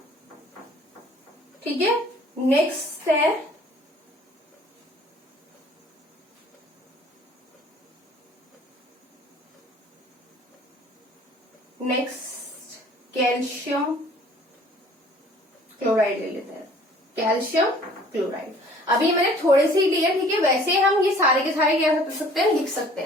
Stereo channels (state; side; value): normal; both; correlation 0.53